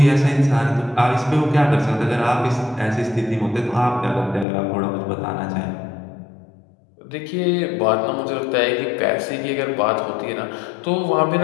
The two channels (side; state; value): right; drops out; at 4.5 s